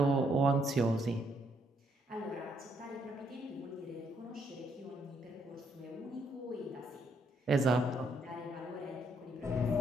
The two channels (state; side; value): normal; both; correlation 0.73